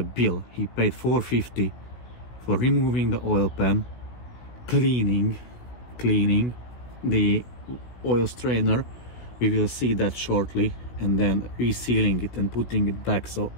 bill. He paid $450 for removing the oil pan, cleaning the oil strainer, we will see that shortly, and then resealing it and putting it back. So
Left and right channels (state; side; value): late; right; 16 ms